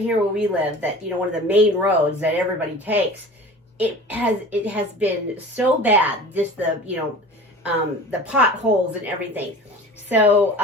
where we live, that, one of the main roads that everybody takes, it has been so bad, just the potholes and everything. So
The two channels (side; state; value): both; normal; correlation 0.39